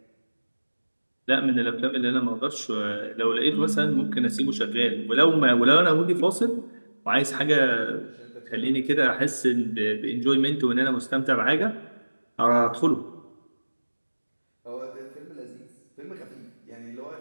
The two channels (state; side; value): inverted; both; correlation -1.00